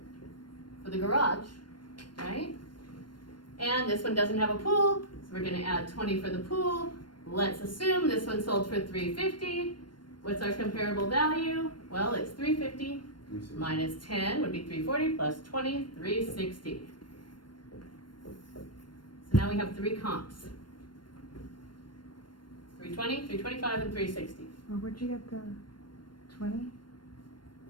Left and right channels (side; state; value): right; late; 0.72 ms